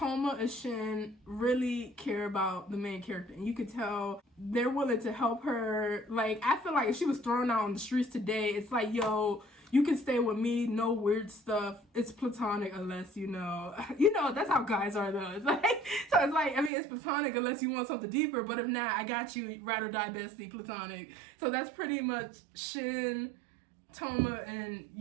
and Shin really care about the main character, and you could tell they're willing to help her. Like I feel like if she was thrown out on the streets today, it's like, yo, you can stay with me, no weird stuff. It's platonic unless you know, that's how guys are though. It's like, so it's like, I mean, it's platonic unless you want something deeper, but if not, I got you, ride or die bestie, platonic. So that's pretty much Shin, Toma, and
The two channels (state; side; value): drops out; left; at 16.7 s